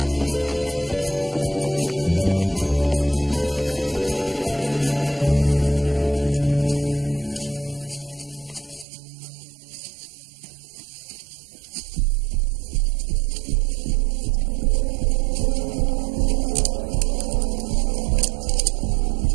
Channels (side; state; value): left; drops out; at 8.8 s